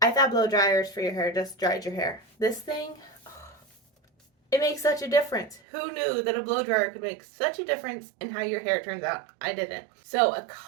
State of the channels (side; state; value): left; drops out; at 5.6 s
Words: I thought blow dryers for your hair just dried your hair. This thing, it makes such a difference. Who knew that a blow dryer could make such a difference in how your hair turns out? I didn't. So a